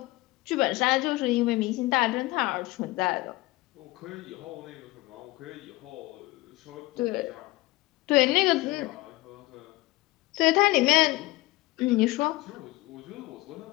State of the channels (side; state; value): right; quieter; 20.5 dB